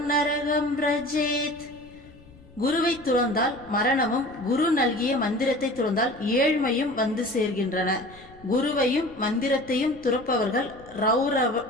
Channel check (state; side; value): noise; left; rumble, 24 dB below the sound